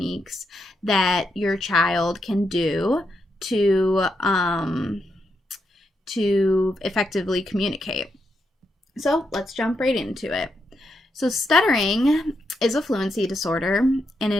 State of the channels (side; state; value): both; normal; correlation 0.82